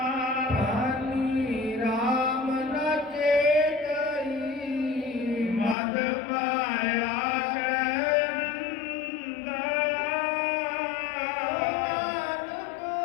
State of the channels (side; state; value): right; drops out; at 5.8 s